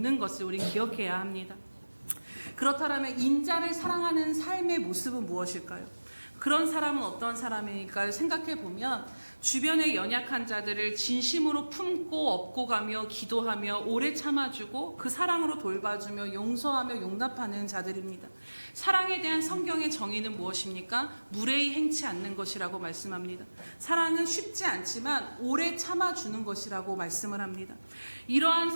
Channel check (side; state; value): both; inverted; correlation -1.00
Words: 것을 우리 기억해야 합니다. 그렇다면 인자를 사랑하는 삶의 모습은 무엇일까요? 그런 사람은 어떤 사람일까를 생각해 보면 주변의 연약한 자들을 진심으로 품고 업고 가며 기도하며 오래 참아주고 그 사랑으로 돌봐주며 용서하며 용납하는 자들입니다. 사랑에 대한 성경의 정의는 무엇입니까? 무례히 행치 않는 것이라고 말씀합니다. 사랑은 쉽지 않지만 오래 참아주는 것이라고 말씀을 합니다. 이러한